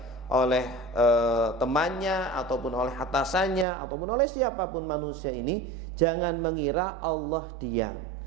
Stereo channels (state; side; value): drops out; left; at 3.7 s